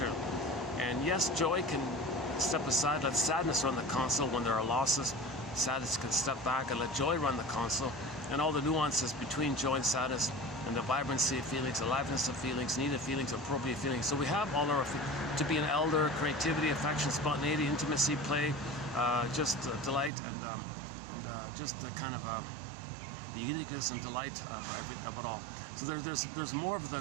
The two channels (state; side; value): drops out; left; at 20.1 s